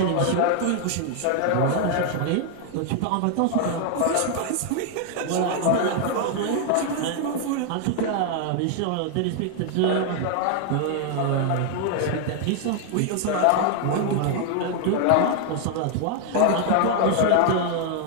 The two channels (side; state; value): both; different; correlation 0.00